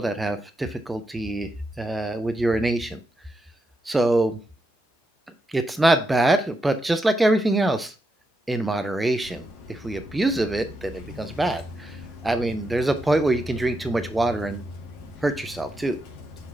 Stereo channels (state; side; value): normal; both; correlation 0.84